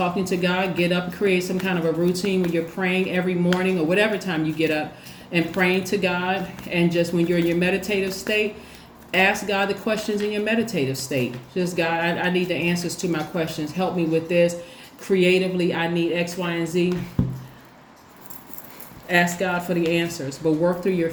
to God. Get up, create some kind of a routine where you're praying every morning or whatever time you get up, and praying to God. And just when you're in your meditative state, ask God the questions in your meditative state. Just, God, I need the answers to my questions. Help me with this. Creatively, I need X, Y, and Z. Ask God for the answers, but work through your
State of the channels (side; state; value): both; identical; correlation 1.00